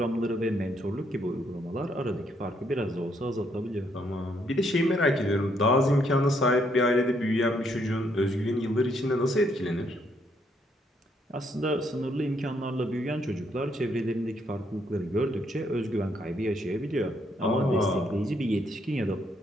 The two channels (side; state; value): both; normal; correlation 0.72